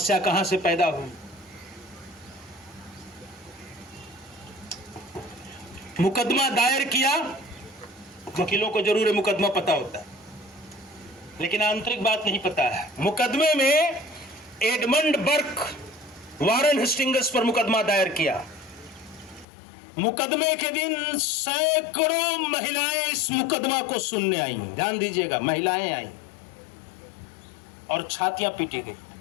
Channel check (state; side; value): drops out; right; at 19.5 s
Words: कहां से पैदा हुई? मुकदमा दायर किया, वकीलों को जरूर मुकदमा पता होता है, लेकिन आंतरिक बात नहीं पता है। मुकदमे में एडमंड बर्क वारन हेस्टिंग्स पर मुकदमा दायर किया। मुकदमे के दिन सैकड़ों महिलाएं इस मुकदमा को सुनने आई। ध्यान दीजिएगा, महिलाएं आई और छातियां पीटी गई।